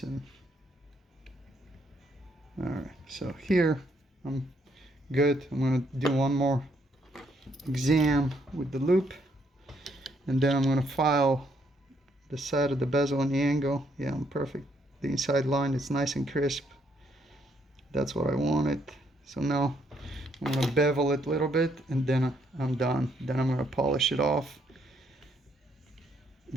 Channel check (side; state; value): both; normal; correlation 0.72